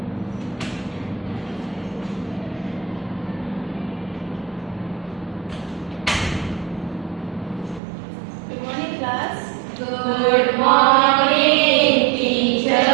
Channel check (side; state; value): left; drops out; at 7.8 s